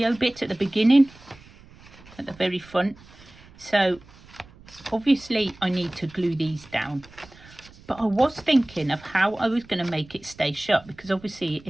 bit at the beginning, at the very front. So obviously I need to glue these down, but I was thinking of how I was going to make it stay shut, because obviously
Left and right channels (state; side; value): noise; right; rumble, 23 dB below the sound